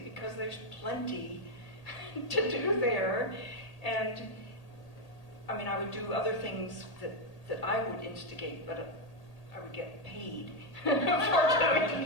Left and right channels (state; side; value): late; right; 1.8 ms